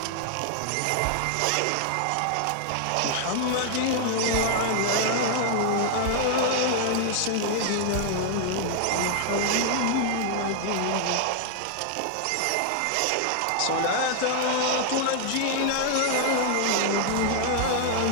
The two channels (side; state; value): both; different; correlation 0.00